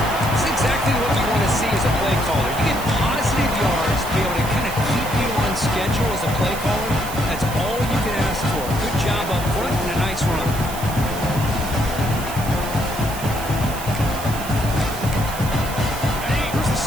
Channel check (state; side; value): noise; right; hiss, 11 dB below the sound